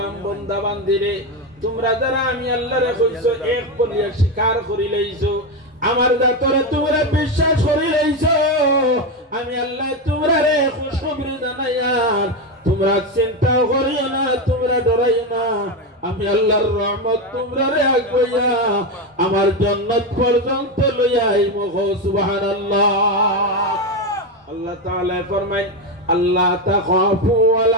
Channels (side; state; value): both; normal; correlation 0.12